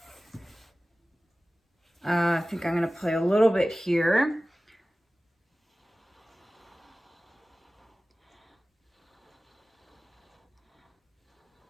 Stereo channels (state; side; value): normal; both; correlation 0.97